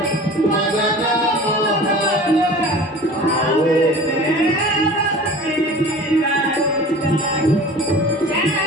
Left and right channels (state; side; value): normal; both; correlation 0.41